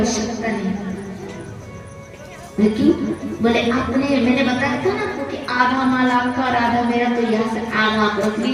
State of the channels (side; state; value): both; identical; correlation 1.00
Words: नहीं। क्यों? बोले आपने, मैंने बताया था ना आपको कि आधा माल आपका और आधा मेरा, तो यहाँ से आधा आप रख